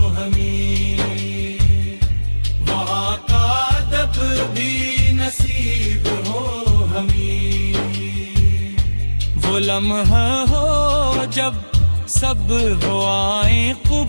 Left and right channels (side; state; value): both; inverted; correlation -1.00